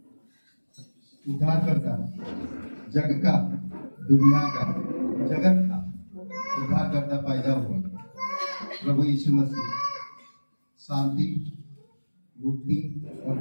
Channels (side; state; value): both; inverted; correlation -1.00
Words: उद्धारकर्ता, जग का, दुनिया का, जगत का उद्धारकर्ता पैदा हुआ प्रभु यीशु मसीह शांति, मुक्ति और